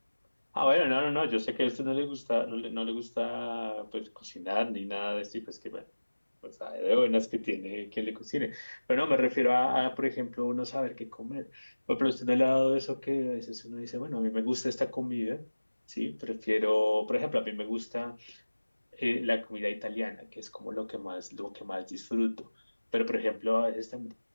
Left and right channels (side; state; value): both; inverted; correlation -1.00